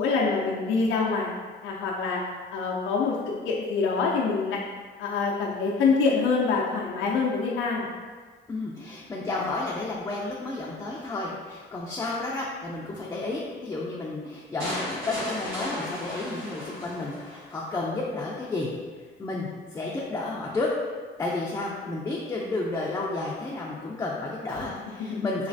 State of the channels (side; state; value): right; quieter; 3.4 dB